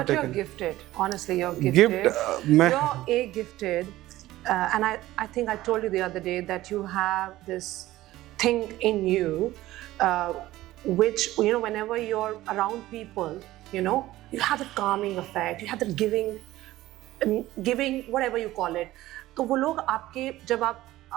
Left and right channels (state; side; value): quieter; left; 16.1 dB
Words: But you're gifted. Honestly, you're gifted. You're gifted. And I think I told you the other day that you have this thing in you, which whenever you're around people, you have that calming effect. You have that giving, whatever you call it. तो वो लोग आपके जब आप